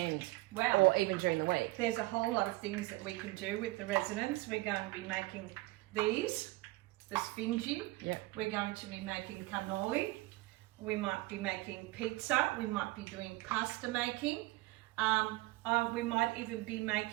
Wow. Or even during the week? There's a whole lot of things that we can do with the residents. We're going to be making these, the Sfingi. Yeah. We're going to be making cannoli. We might be making pizza. We might be doing pasta making. We might even be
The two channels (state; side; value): quieter; left; 20.7 dB